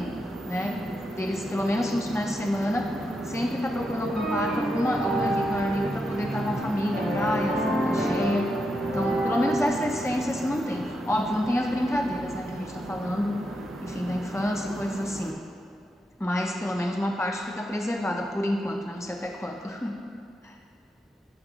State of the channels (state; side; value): normal; both; correlation 0.84